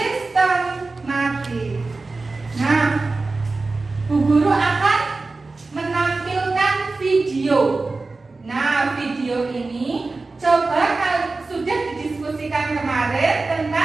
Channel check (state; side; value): quieter; left; 3.6 dB